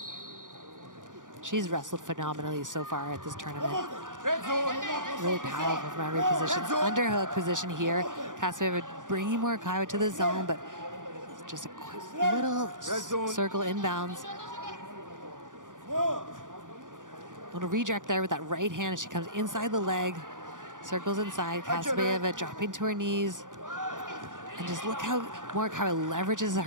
She's wrestled phenomenally so far at this tournament. Really powerful from every position. Underhook position here. Kasabayeva bringing Morikawa to the zone, but just a little circle inbounds. Little redirect there with that right hand as she comes inside the leg, circles inside. Kasabayeva dropping to her knees, and just look how Morikawa leverages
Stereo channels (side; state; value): left; late; 0.88 ms